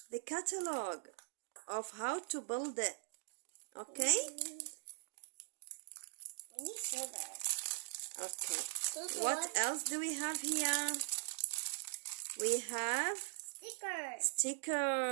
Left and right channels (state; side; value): silent; left; digital silence